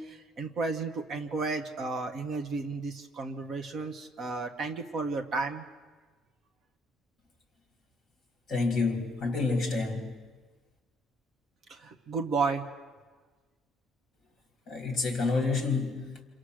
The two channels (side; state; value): both; normal; correlation 0.65